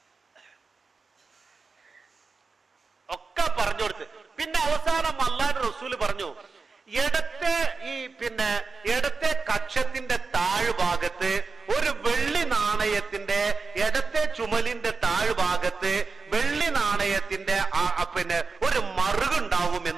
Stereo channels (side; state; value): left; quieter; 4.4 dB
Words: ഒക്കെ പറഞ്ഞു കൊടുത്ത്. പിന്നെ അവസാനം അള്ളാന്റെ റസൂല് പറഞ്ഞു, ഇടത്തെ കക്ഷത്തിന്റെ താഴ്ഭാഗത്ത് ഒരു വെള്ളി നാണയത്തിന്റെ, ഇടത്തെ ചുമലിന്റെ താഴ്ഭാഗത്ത് വെള്ളി നാണയത്തിന്റെ ഒരു മറുകുണ്ടാവും